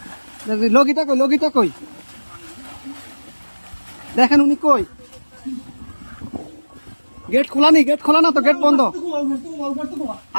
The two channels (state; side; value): inverted; both; correlation -1.00